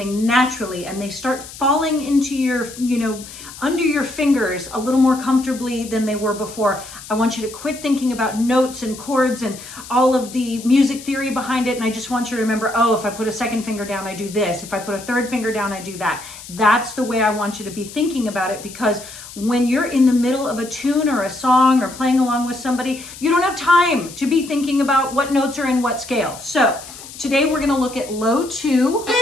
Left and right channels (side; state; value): left; noise; hiss, 15 dB below the sound